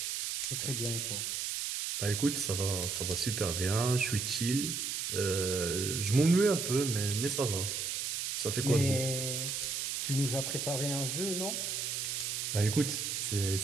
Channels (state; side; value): noise; right; hiss, 2 dB below the sound